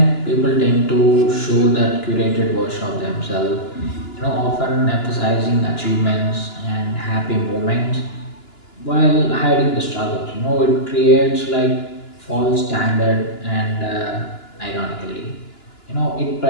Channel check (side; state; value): right; late; 2.9 ms